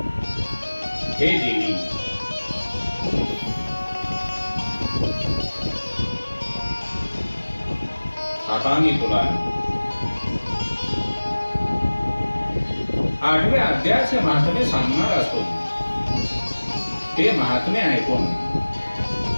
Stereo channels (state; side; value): inverted; both; correlation -1.00